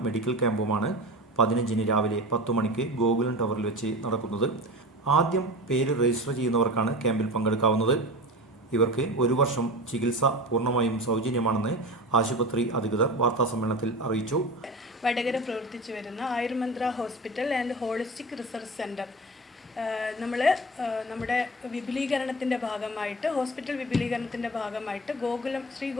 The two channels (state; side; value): normal; both; correlation 0.31